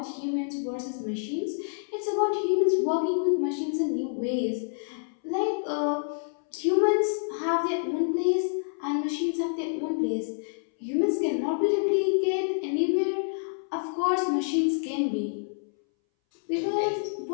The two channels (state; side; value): silent; right; 60 dB below the other